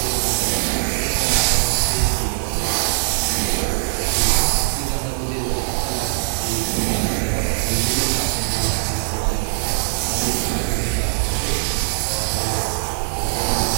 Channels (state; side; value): silent; left; digital silence